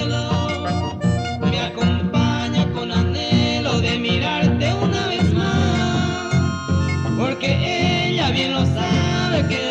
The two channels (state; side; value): identical; both; correlation 1.00